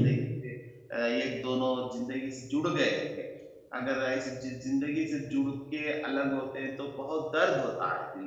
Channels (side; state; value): both; identical; correlation 1.00